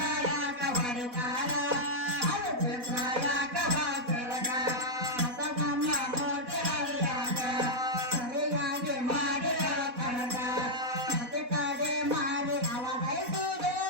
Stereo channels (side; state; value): left; late; 4.1 ms